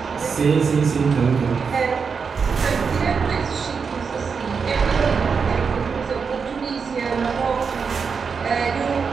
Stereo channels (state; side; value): quieter; left; 5.7 dB